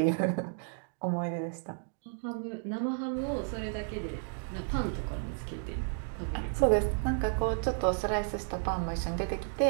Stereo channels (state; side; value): silent; left; 56 dB below the other